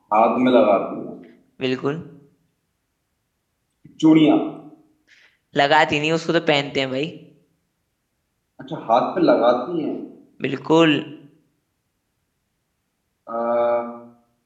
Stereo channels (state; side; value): identical; both; correlation 1.00